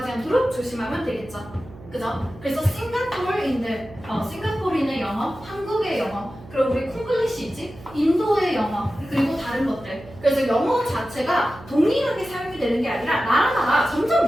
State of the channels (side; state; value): right; noise; hum, 19 dB below the sound